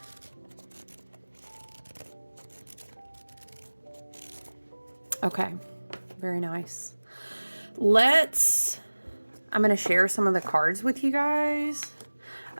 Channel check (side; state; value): both; inverted; correlation -1.00